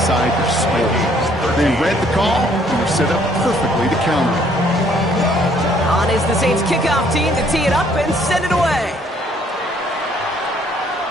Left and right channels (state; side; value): normal; both; correlation 0.63